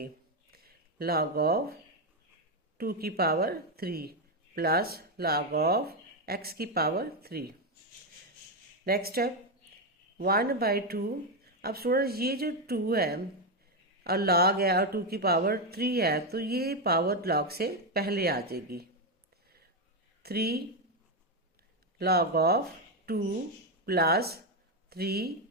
log ऑफ 2 की power 3 plus log of x की पावर 3। Next step 1/2। अब स्टूडेंट ये जो 2 है और log है और 2 की पावर 3 है, तो ये पावर log से पहले आ जाएगी। 3 log of 2 plus 3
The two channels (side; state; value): both; normal; correlation 0.06